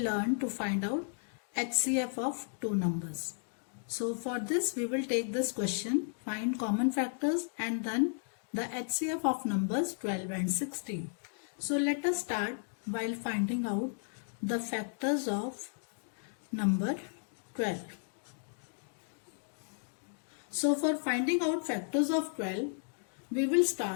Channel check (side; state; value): right; silent; digital silence